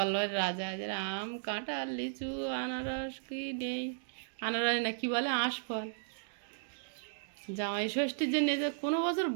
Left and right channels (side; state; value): left; silent; digital silence